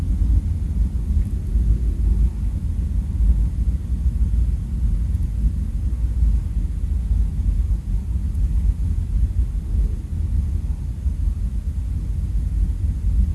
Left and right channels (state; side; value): identical; both; correlation 1.00